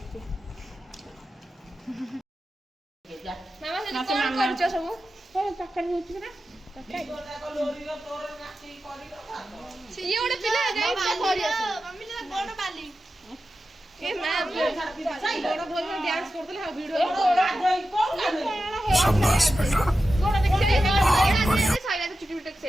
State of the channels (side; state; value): both; normal; correlation 0.92